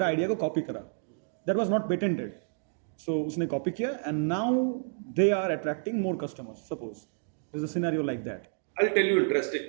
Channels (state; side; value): silent; left; digital silence